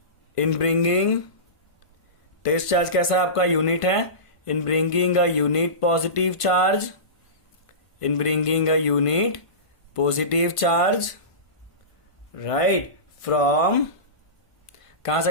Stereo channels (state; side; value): late; right; 1.5 ms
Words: इन ब्रिंगिंग, टेस्ट चार्ज कैसा है आपका, यूनिट है, in bringing a unit positive charge, in bringing a unit positive charge, right, from, कहां